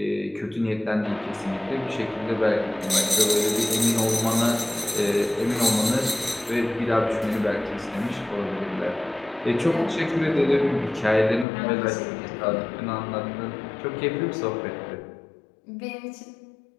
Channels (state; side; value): drops out; right; at 11.5 s